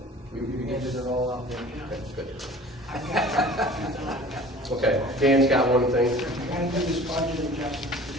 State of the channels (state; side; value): normal; both; correlation 0.44